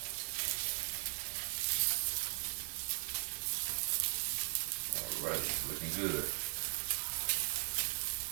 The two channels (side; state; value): left; silent; digital silence